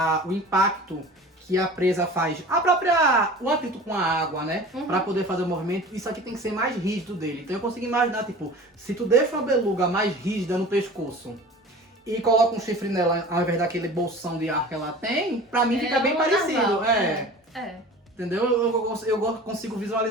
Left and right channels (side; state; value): both; normal; correlation 0.39